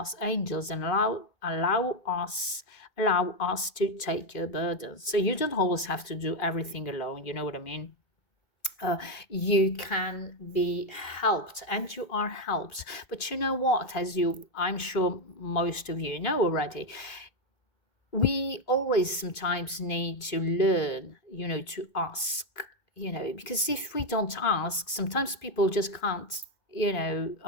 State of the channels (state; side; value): late; right; 2.5 ms